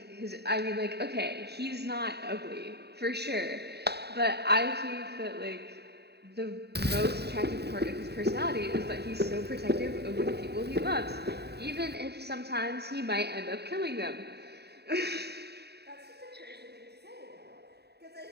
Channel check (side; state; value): left; late; 0.48 ms